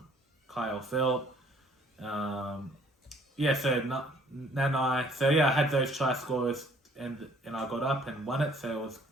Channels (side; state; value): both; normal; correlation 0.59